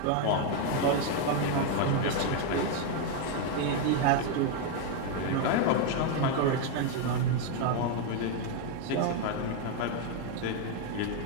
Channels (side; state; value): both; different; correlation 0.01